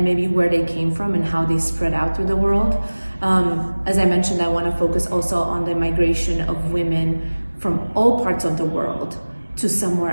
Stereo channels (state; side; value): inverted; both; correlation -1.00